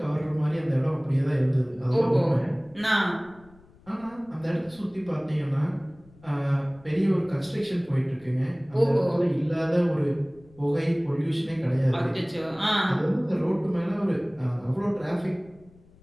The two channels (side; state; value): left; noise; rumble, 26 dB below the sound